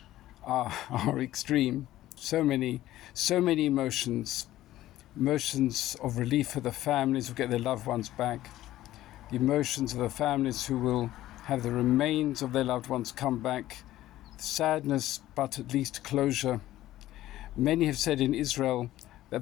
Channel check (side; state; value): right; quieter; 14.6 dB